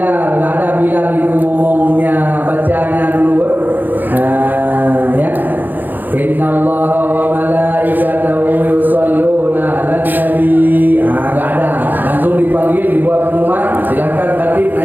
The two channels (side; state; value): left; late; 0.087 ms